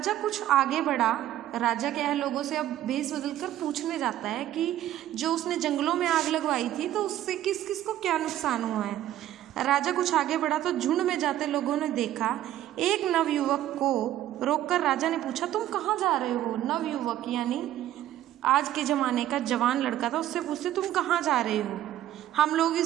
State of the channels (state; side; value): quieter; left; 12.9 dB